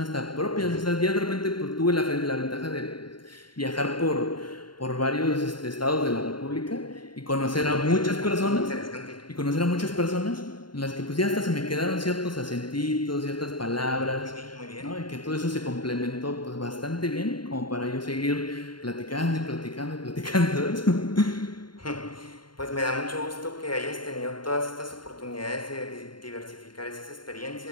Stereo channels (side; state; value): right; late; 0.72 ms